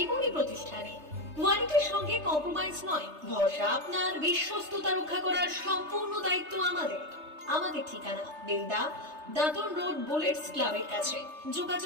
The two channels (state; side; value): late; left; 3.3 ms